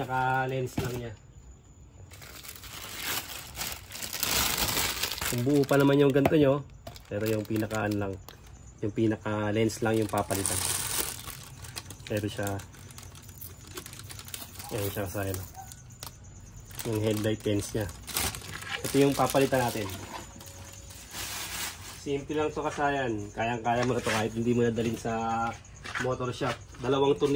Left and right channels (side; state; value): both; identical; correlation 1.00